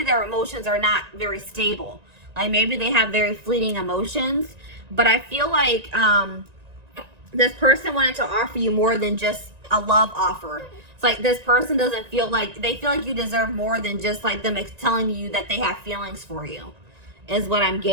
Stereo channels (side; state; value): left; late; 1.9 ms